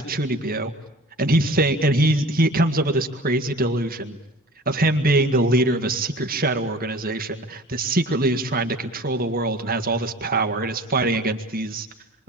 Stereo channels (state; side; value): normal; both; correlation 0.42